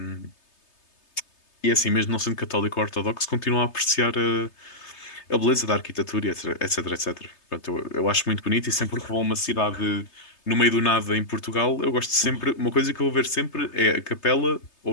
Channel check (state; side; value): late; right; 3.3 ms